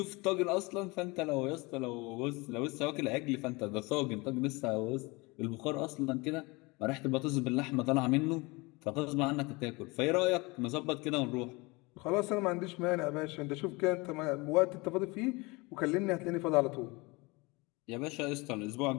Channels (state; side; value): quieter; right; 25.4 dB